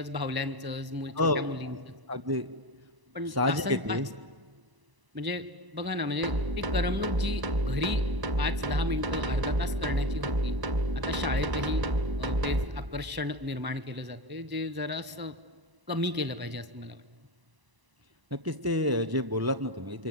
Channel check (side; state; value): left; late; 1.0 ms